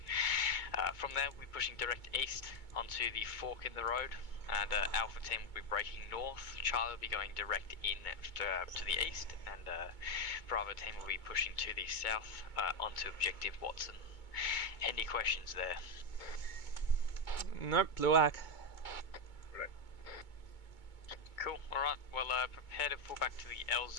From there, we're pushing direct east onto the fork in the road. and Alpha team will be breaking north. Charlie will be going direct in to the east, and Bravo team will be pushing to the south onto objective Watson. Any questions there? Nope, blue arc. Cool, alright, well prepare to fall back to the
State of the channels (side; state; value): right; late; 2.2 ms